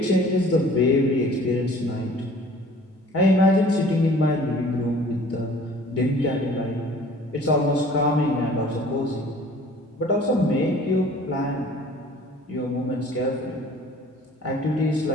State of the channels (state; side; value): normal; both; correlation 0.50